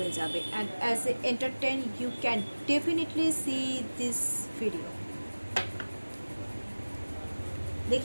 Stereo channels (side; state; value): both; inverted; correlation -1.00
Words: যাবে, and as a entertain you can definitely see this video.